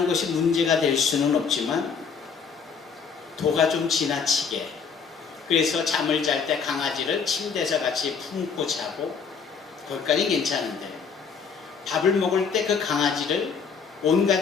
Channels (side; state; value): right; quieter; 5.9 dB